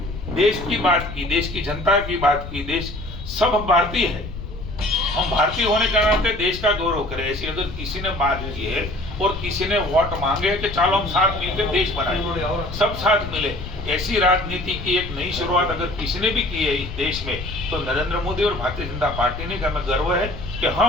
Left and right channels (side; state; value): left; noise; rumble, 9 dB below the sound